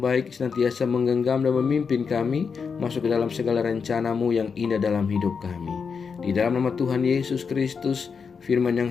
senantiasa menggenggam dan memimpin kami masuk ke dalam segala rencana-Mu yang indah dalam hidup kami. Di dalam nama Tuhan Yesus Kristus, firman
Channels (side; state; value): right; quieter; 5.8 dB